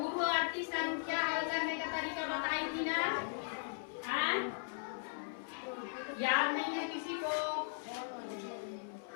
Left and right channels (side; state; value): right; silent; 52 dB below the other